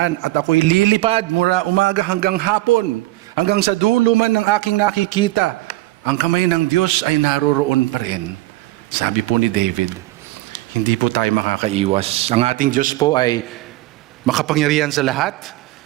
at ako'y lilipad mula umaga hanggang hapon, hanggang sa dulo man ng aking nakikita. Ang kamay ng Diyos ay naroroon pa rin. Sabi po ni David, hindi po tayo makakaiwas. Ang ating Diyos po ay makapangyarihan sa lahat.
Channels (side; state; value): left; quieter; 17.9 dB